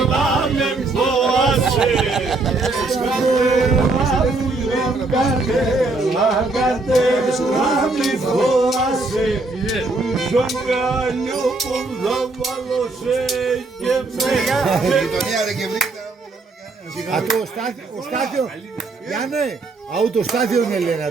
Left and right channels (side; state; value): left; quieter; 3.4 dB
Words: με φόασε. Κατέλα με φόασε. Στον καλιό που θα βάλω σε και Ο Στάθιο, Γιάννε, αού το Στάθιο είναι λένε